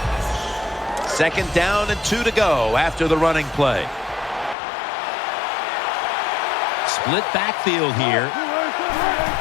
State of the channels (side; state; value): right; drops out; at 4.5 s